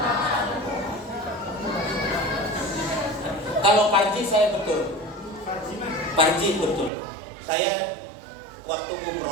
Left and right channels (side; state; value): left; drops out; at 6.9 s